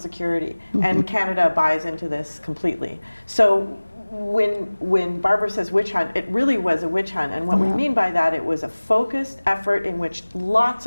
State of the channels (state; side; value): inverted; both; correlation -1.00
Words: And Canada buys into this completely. So when Barbara says witch hunt, it really was a witch hunt. And what we mean by that, it was a focused effort in which lots